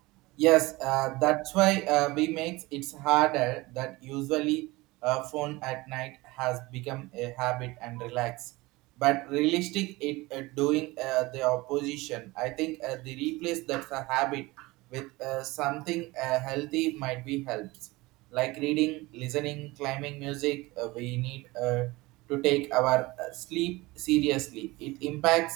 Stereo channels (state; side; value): quieter; left; 21.4 dB